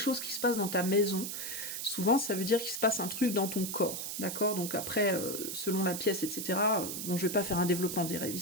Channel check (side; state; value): right; noise; hiss, 5 dB below the sound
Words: qui se passe dans ta maison, souvent, ça veut dire qu'il se passe un truc dans ton corps, d'accord? Donc après, selon la pièce, etc., bon, je vais pas faire un développement des rêves